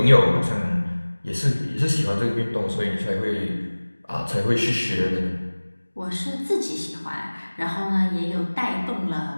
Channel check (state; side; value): inverted; both; correlation -1.00